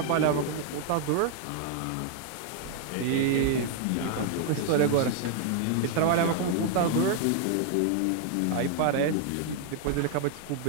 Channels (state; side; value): different; both; correlation 0.00